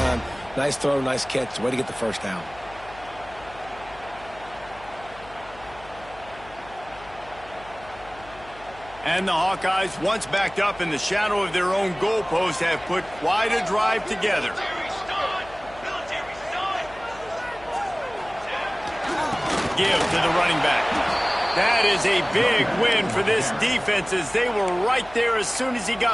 Nice throw, nice catch. Way to get the first down. And the Hawkeyes, once backed up in the shadow of their own goalpost, have put quite a drive together. Give to the running back. That is a big win for this defense as they were right there as soon as he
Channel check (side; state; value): left; noise; hum, 20 dB below the sound